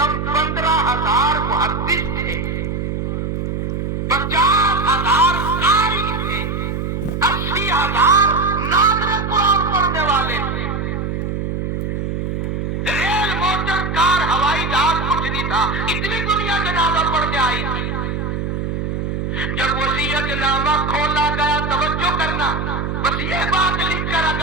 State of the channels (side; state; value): right; noise; hum, 2 dB below the sound